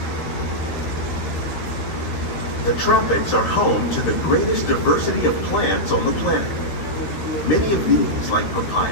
The tropics are home to the greatest diversity of plants on the planet. Many of these, like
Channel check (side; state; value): right; late; 13 ms